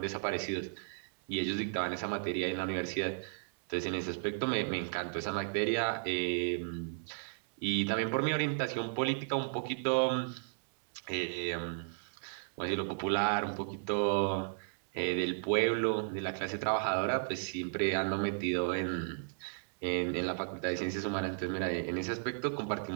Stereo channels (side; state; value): left; silent; digital silence